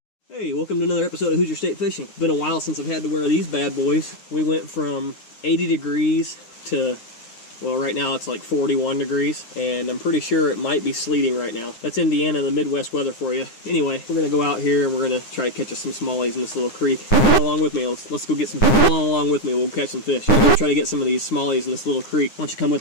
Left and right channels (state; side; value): late; right; 9.6 ms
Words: Hey, welcome to another episode of Hoosier State Fishing. It's been a while since I've had to wear these bad boys. We went from 80 degrees to, well, right now it's like 41 degrees, and I'm pretty sure it might be sleeting right now. That's Indiana, the Midwest weather for you. Anyway, we're gonna go out here and we're gonna try to catch us some smallies in this little creek. Come along with me. Let's go get some. Come along with me. We'll catch some fish. We're gonna try to get some of these smallies in this little creek. Why don't you come